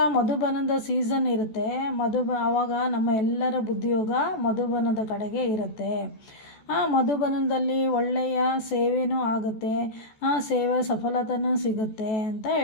ಮಧುಬನದ ಸೀಸನ್ ಇರುತ್ತೆ, ಆವಾಗ ನಮ್ಮ ಎಲ್ಲರ ಬುದ್ಧಿಯೋಗ ಮಧುಬನದ ಕಡೆಗೆ ಇರುತ್ತೆ. ಮಧುಬನದಲ್ಲಿ ಒಳ್ಳೆಯ ಸೇವೆನೂ ಆಗುತ್ತೆ, ಸೇವೆ ಸಫಲತೆನೂ ಸಿಗುತ್ತೆ ಅಂತ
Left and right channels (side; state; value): right; late; 14 ms